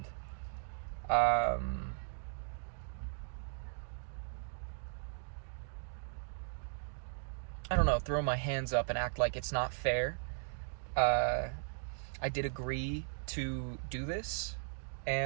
I don't know, throw my hands up and act like it's not fair, I did agree to do this,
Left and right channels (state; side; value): silent; left; digital silence